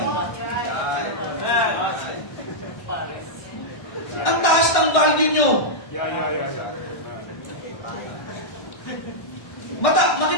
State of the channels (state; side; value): late; right; 1.6 ms